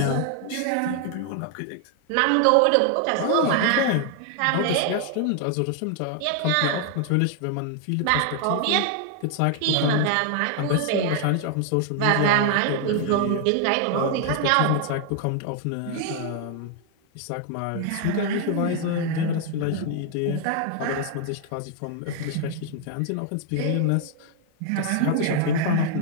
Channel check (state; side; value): different; both; correlation 0.00